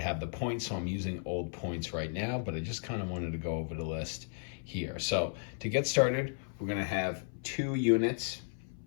have the points, so I'm using old points right now, but I just kind of wanted to go over the list here. So to get started, we're going to have 2 units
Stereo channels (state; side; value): silent; right; 55 dB below the other